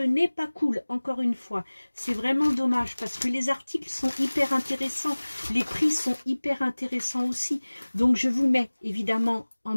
pas cool, encore une fois. C'est vraiment dommage parce que les articles sont hyper intéressants, les prix sont hyper intéressants aussi. Donc je vous mets évidemment en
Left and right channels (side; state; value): both; inverted; correlation -1.00